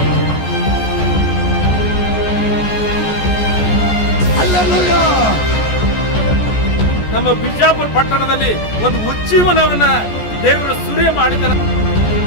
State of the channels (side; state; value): right; late; 14 ms